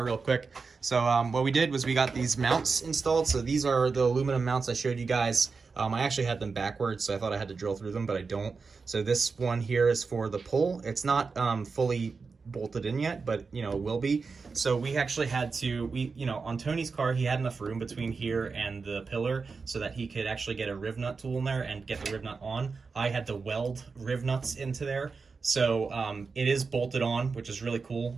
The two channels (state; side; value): quieter; left; 4.7 dB